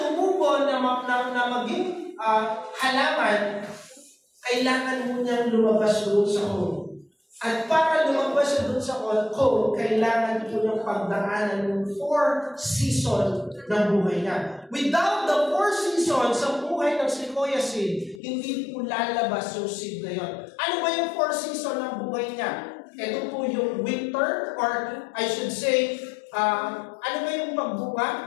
na maging halaman, kailangan mo niyang lumabas doon sa cone. At para lumabas siya doon sa cone, kailangan po niyang pagdaanan ng 4 seasons ng buhay niya. Without the 4 seasons sa buhay ng sequoia seed, hindi po lalabas yung seed na yun. Ano ba yung 4 seasons ng buhay niya? Ito po yung winter, or I should say, ano ba yung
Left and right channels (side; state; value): right; drops out; at 18.2 s